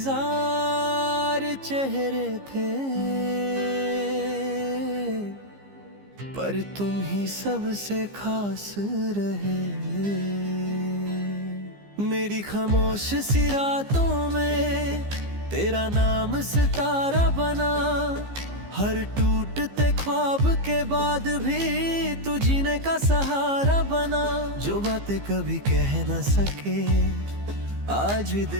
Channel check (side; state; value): left; late; 15 ms